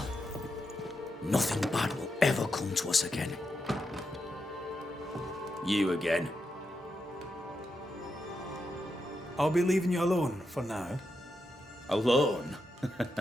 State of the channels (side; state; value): both; normal; correlation 0.85